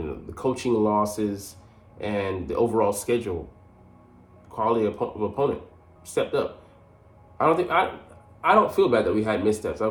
the coaching losses, and the overall schedule, quality of opponent stepped up. I don't feel bad that we had missteps.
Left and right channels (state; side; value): identical; both; correlation 1.00